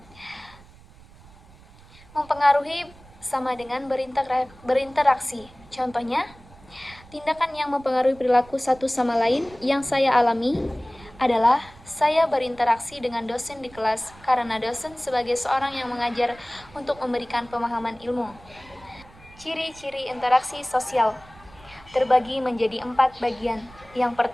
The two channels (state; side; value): noise; right; rumble, 23 dB below the sound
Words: Mempengaruhi sama dengan berinteraksi. Contohnya, tindakan yang mempengaruhi perilaku satu sama lain yang saya alami adalah saya berinteraksi dengan dosen di kelas karena dosen sebagai seorang yang mengajar untuk memberikan pemahaman ilmu. Ciri-ciri interaksi sosial terbagi menjadi 4 bagian. Yang